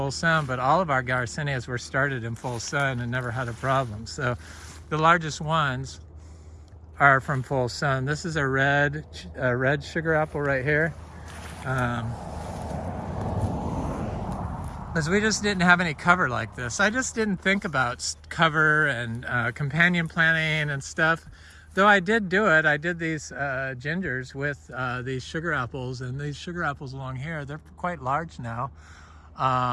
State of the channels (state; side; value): identical; both; correlation 1.00